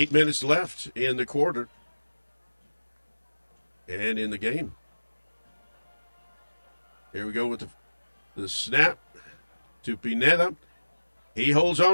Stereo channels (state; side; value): inverted; both; correlation -1.00